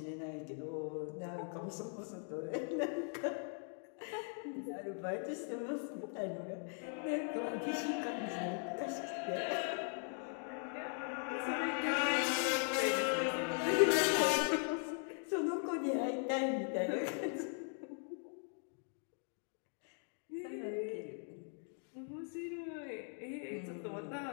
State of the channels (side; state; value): right; silent; 51 dB below the other